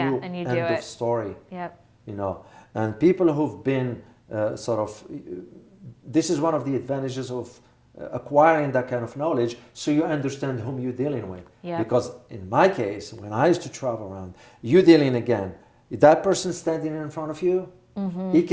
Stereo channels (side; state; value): both; identical; correlation 1.00